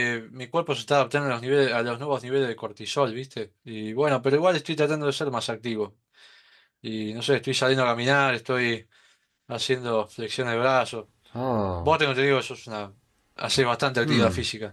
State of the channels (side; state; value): both; identical; correlation 1.00